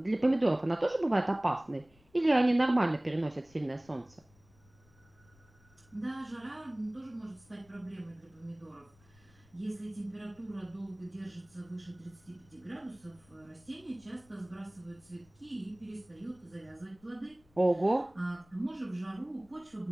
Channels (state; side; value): noise; left; rumble, 29 dB below the sound